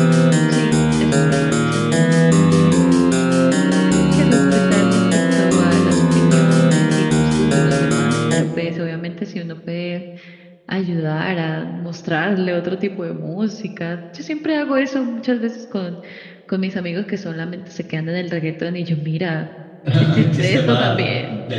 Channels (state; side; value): identical; both; correlation 1.00